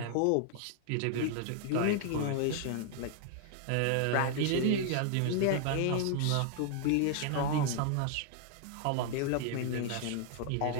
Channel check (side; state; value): both; different; correlation 0.00